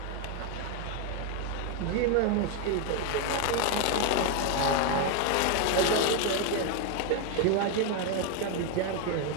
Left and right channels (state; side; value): different; both; correlation 0.01